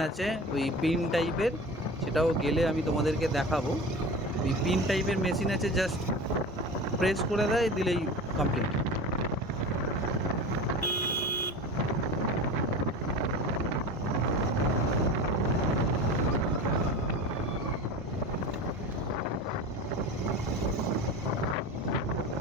আছে ওই পিন টাইপের, সেটাও গেলে আমি তোমাদেরকে দেখাবো। ওই পিন টাইপের মেশিন আছে, জাস্ট প্রেস করে দেয়, দিলেই কমপ্লিট।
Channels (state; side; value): normal; both; correlation 0.32